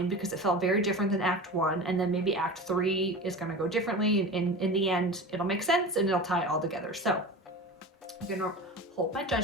because it felt very different than Act 1, and then maybe Act 3 is gonna go differently, and in the end, it'll make sense and it'll tie it all together. So I'm gonna hold my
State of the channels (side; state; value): both; normal; correlation 0.32